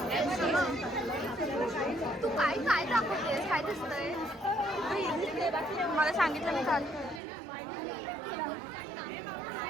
तू काय काय दाखवतेस, काय दिसतंय मला सांगितलं मी काल.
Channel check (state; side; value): drops out; left; at 7.2 s